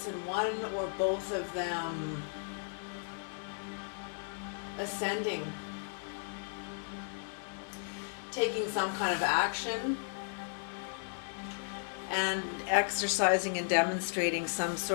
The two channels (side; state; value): right; silent; digital silence